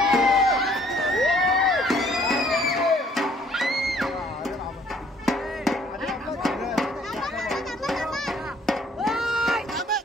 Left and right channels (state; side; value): normal; both; correlation 0.61